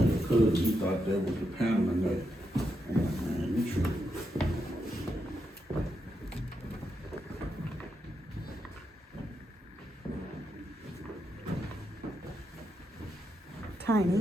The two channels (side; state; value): both; normal; correlation 0.83